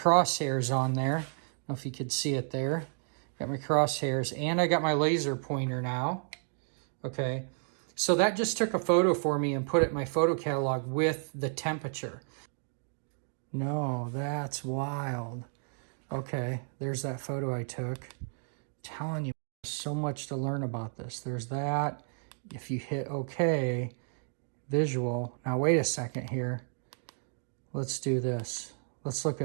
on there. I don't know if you could see it there. Got my crosshairs, and I got my laser pointer now. Okay, so that just took a photo for me and put it in my photo catalog with the temperature. No, that's wild. Okay, there's that photo I took. I'm telling you, so much to learn about this. There's that. If you hit OK, visual. Now wait a second here. Let's do this. Let's look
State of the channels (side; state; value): left; silent; 56 dB below the other